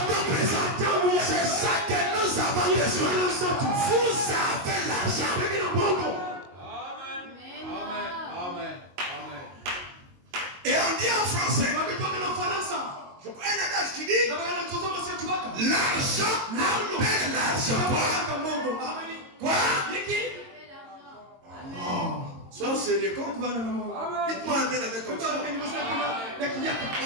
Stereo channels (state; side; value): late; left; 22 ms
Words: temps présent. C'est ça que nous avons besoin. Vous avez l'argent. Et on dit en français. Je crois un adage qui dit l'argent appelle l'argent. Quoi? Sois sérieux. Dites-moi amen avec comme ça.